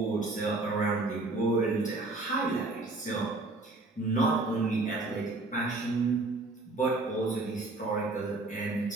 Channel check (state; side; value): quieter; left; 3.2 dB